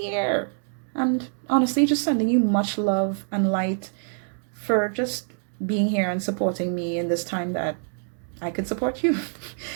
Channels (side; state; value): left; silent; 60 dB below the other